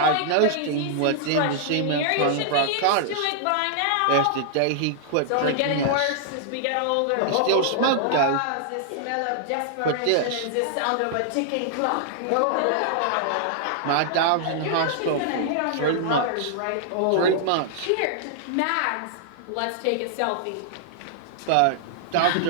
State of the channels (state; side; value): different; both; correlation -0.01